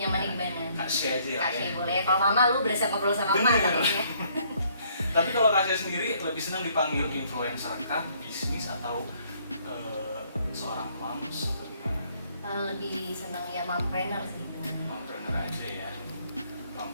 nyamannya gimana. Kak Shay aja Kak ya. Shay boleh. Kalau Mama lu berasa ngobrol sama Mama katanya. Tapi kalau Kak Shay sendiri lebih senang dipanggil influencer kah, bisnis atau seorang moms atau gimana? Lebih senang ya mompreneur sih. Mompreneur aja ya.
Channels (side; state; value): both; inverted; correlation -0.65